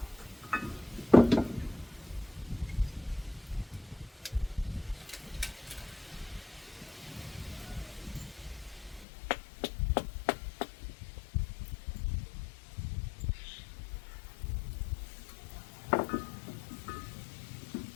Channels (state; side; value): drops out; right; at 9.1 s